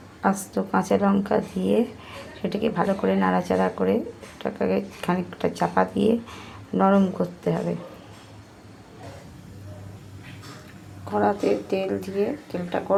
আস্ত কাঁচা লঙ্কা দিয়ে সেটাকে ভালো করে নাড়াচাড়া করে ওটাকে খানিকটা চাপা দিয়ে নরম করতে হবে। কড়াতে তেল দিয়ে তেলটা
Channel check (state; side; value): identical; both; correlation 1.00